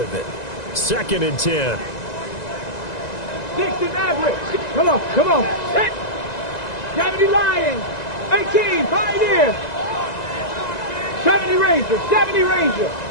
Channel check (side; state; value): right; late; 1.9 ms